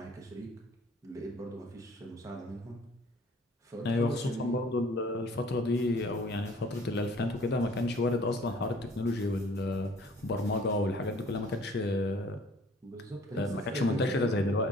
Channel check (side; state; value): both; normal; correlation 0.54